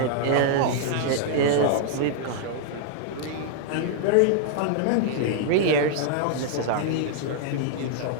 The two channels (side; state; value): both; different; correlation -0.01